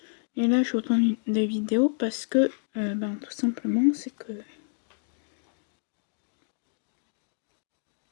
Et là je vous tourne des vidéos parce que tout simplement c'est que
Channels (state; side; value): silent; right; digital silence